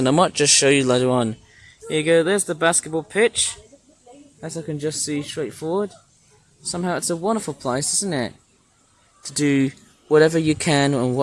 I might just show you later on. Here you go, there's the basketball pitch. As I can just see straight forward. Somehow it's a wonderful place, isn't it? To do whatever you can and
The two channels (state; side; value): identical; both; correlation 1.00